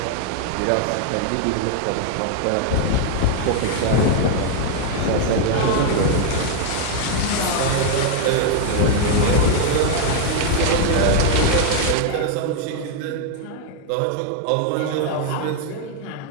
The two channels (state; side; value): different; both; correlation 0.00